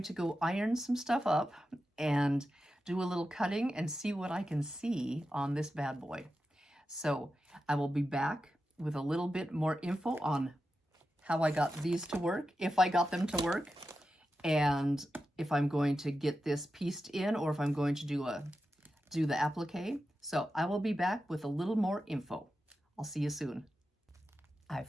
to go iron some stuff up and do a little cutting and see what I can see on this bad boy. So I will be back with a little bit more info on how I got these to work, if I got them to work, and if I'm going to get this pieced in or if I'm going to do the applique. So I will be back with a little more info. I'll see you soon. I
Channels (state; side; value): normal; both; correlation 0.91